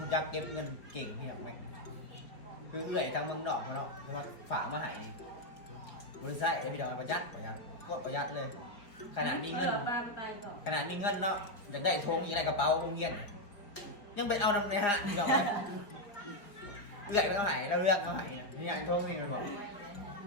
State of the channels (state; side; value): late; right; 4.9 ms